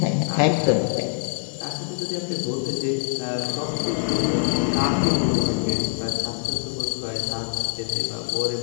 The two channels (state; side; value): silent; right; digital silence